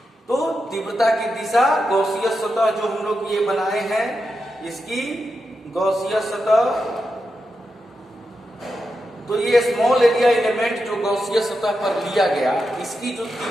तो तीव्रता की दिशा गॉसीय सतह जो हम लोग ये बनाए हैं, इसकी गॉसीय सतह, तो ये स्मॉल एरिया एलिमेंट जो गॉसीय सतह पर लिया गया, इसकी जो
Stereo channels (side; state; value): both; normal; correlation 0.88